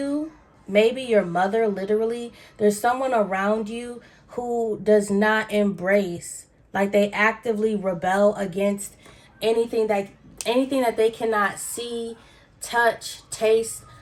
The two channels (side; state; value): both; identical; correlation 1.00